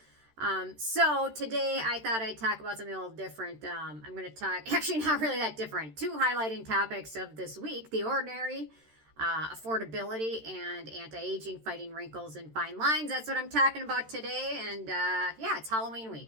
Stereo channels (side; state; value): left; late; 13 ms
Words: So today I thought I'd talk about something a little different. I'm going to talk, actually not really that different, two highlighting topics of this week: the ordinary, affordability, and anti-aging, fighting wrinkles and fine lines. That's what I'm talking about today. And yeah, it's Halloween